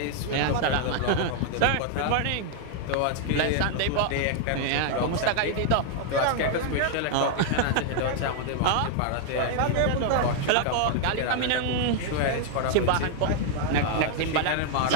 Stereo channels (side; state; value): both; different; correlation 0.00